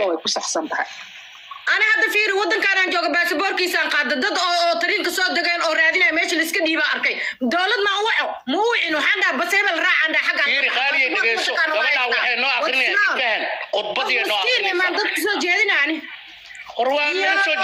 يكون أحسن بها أنا هذا فيري ودن كان جوجا باسبور كيسان قاد ضد أو طريق صوت دقين أو رادينا ماشي لسك ديبا أركي دولة ما مو إنه حدا بس هي بالراع عنده حاجة فيري خالي دقيسو قبلنا وحي نوع أخرين كان قطبتي نوع أخرين ما ضد صوت جيدنا يعني قروان من صوت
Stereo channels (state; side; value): identical; both; correlation 1.00